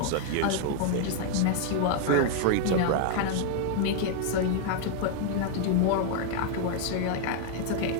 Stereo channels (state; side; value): different; both; correlation 0.00